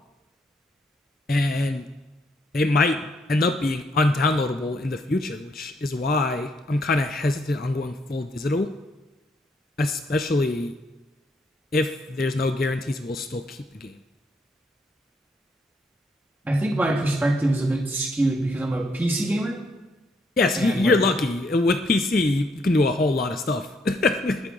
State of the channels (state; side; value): normal; both; correlation 0.72